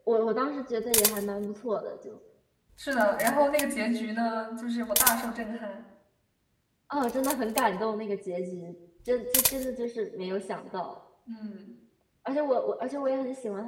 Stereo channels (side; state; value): both; identical; correlation 1.00